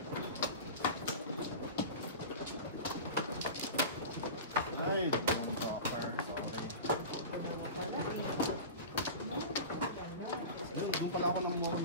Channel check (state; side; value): inverted; both; correlation -0.31